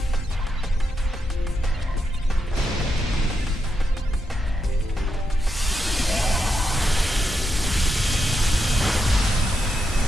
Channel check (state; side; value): normal; both; correlation 0.84